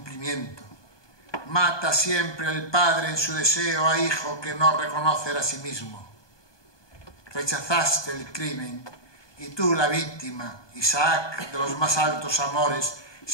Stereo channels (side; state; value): right; late; 1.2 ms